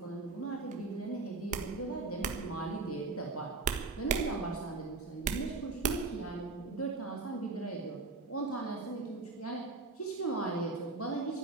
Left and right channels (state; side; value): quieter; left; 3.8 dB